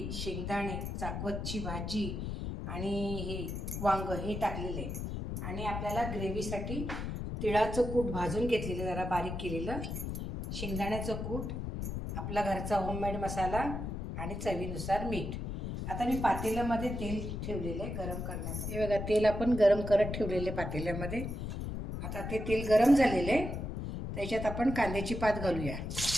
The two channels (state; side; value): noise; left; rumble, 4 dB below the sound